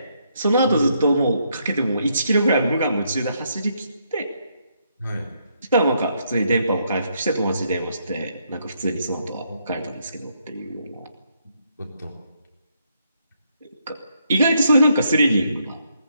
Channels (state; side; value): inverted; both; correlation -0.75